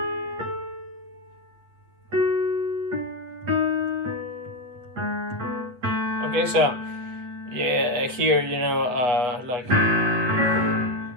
Okay, so yeah, here, like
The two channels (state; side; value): late; left; 8.3 ms